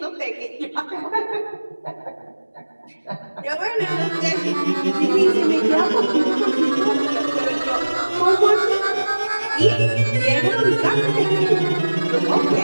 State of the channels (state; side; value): inverted; both; correlation -1.00